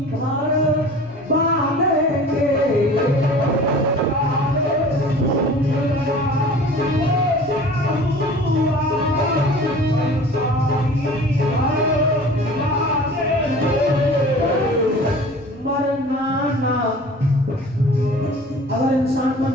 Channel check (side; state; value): left; noise; rumble, 27 dB below the sound